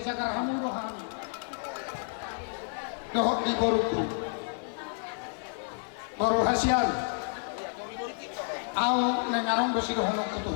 hamu no kami. Dohok di boruku, boru hasian. Au nengarong besi dohong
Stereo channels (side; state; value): right; silent; 58 dB below the other